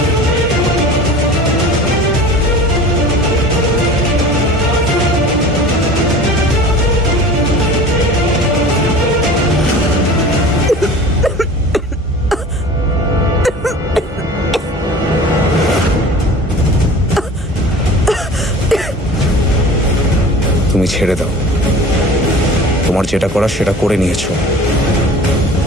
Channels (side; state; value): both; normal; correlation 0.41